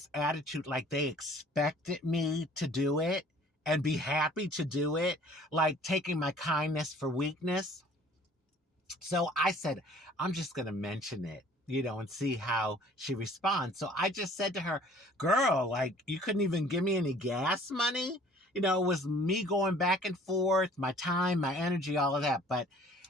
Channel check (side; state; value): both; normal; correlation 0.53